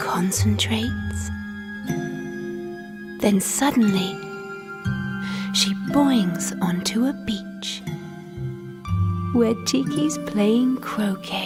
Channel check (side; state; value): both; identical; correlation 1.00